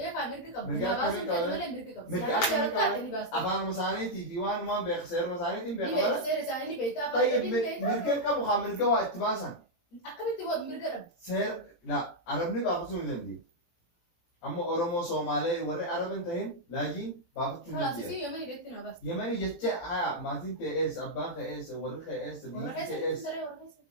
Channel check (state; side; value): late; right; 18 ms